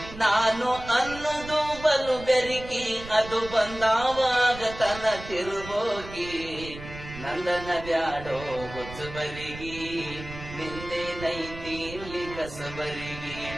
ನಾನು ಅನ್ನೋದು ಬಲು ಬೆರಿಕಿ, ಅದು ಬಂದಾವಾಗ ತನ ತಿರುಬೋಕಿ. ನಂದನ ಬ್ಯಾಡೋ ಹುಚ್ಚಬರಿಗಿ, ನಿಂದೇನೈತಿ ಇಲ್ಲಿ ಕಸಬರಿಗಿ.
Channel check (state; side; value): noise; right; rumble, 13 dB below the sound